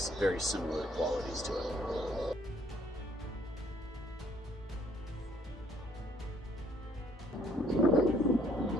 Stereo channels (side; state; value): both; normal; correlation 0.64